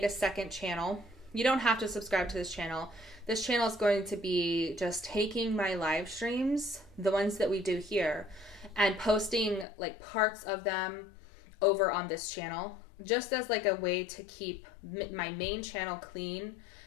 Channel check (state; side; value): drops out; right; at 9.7 s